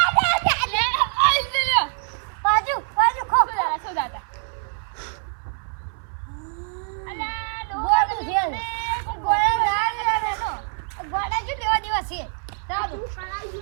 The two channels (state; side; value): silent; left; 59 dB below the other